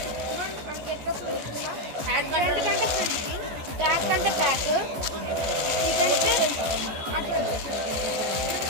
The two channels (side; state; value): left; late; 14 ms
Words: ట్యాక్ కంటే ప్యాక్